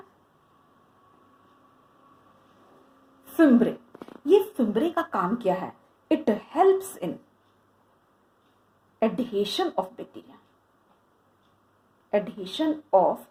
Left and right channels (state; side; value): identical; both; correlation 1.00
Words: फिम्ब्रे। ये फिम्ब्रे का काम क्या है? It helps in adhesion of bacteria, adhesion of